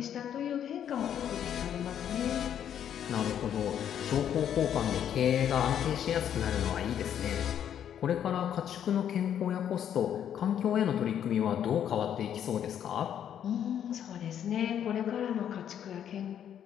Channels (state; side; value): quieter; right; 9.5 dB